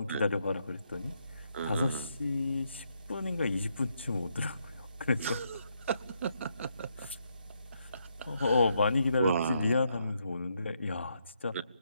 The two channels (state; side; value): inverted; both; correlation -0.77